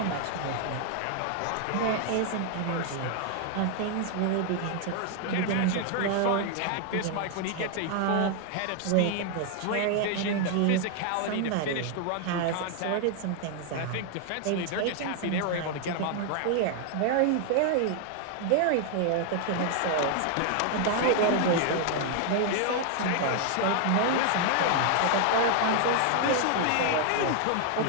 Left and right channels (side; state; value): both; different; correlation 0.00